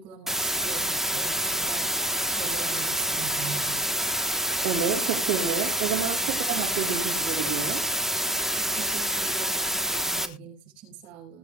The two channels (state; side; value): normal; both; correlation 0.41